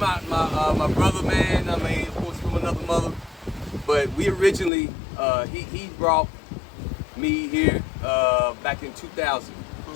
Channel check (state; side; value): drops out; right; at 4.7 s